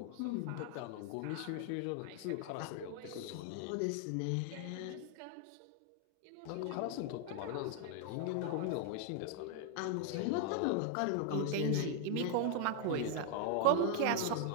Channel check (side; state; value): both; different; correlation 0.00